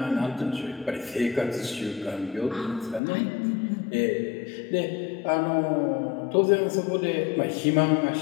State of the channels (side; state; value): right; drops out; at 3.0 s